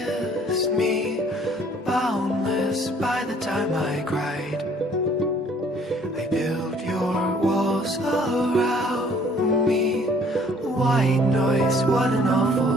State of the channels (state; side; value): normal; both; correlation 0.58